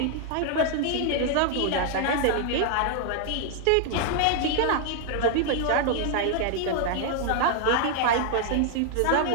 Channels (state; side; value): different; both; correlation -0.01